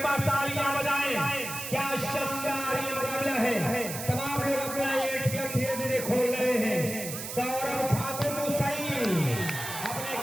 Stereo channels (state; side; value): noise; right; hiss, 7 dB below the sound